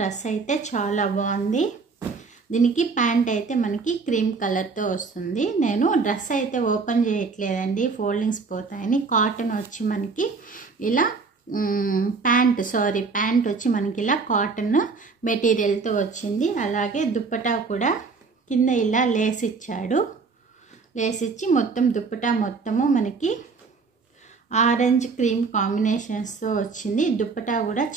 అయితే చాలా బాగుంది. దీనికి ప్యాంట్ అయితే మనకి క్రీమ్ కలర్తో వస్తుంది. నేను డ్రెస్ అయితే ఓపెన్ చేయట్లేదండి, ఫోల్డింగ్స్ పోతాయని. కాటన్ వచ్చి మనకి ఇలా ప్యాంట్ వచ్చి మనకి ఇలా కాటన్ మెటీరియల్తో వచ్చింది. అలాగే దుప్పటా కూడా కింద ఇలా లేస్ ఇచ్చాడు. లేస్ ఇచ్చి మొత్తం దుప్పటా మొత్తము మనకి ఆరెంజ్ క్రీమ్ కాంబినేషన్స్తో వచ్చింది. దుప్పటా కూడా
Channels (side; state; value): left; quieter; 4.6 dB